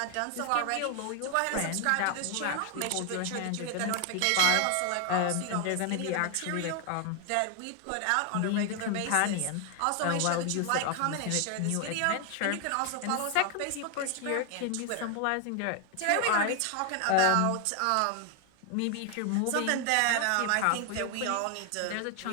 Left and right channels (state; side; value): different; both; correlation 0.00